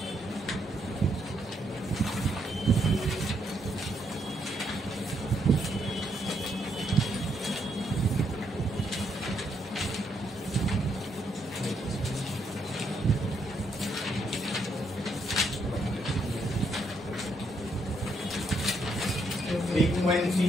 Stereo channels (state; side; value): normal; both; correlation 0.75